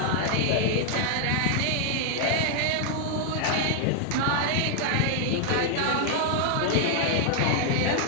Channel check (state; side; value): different; both; correlation 0.00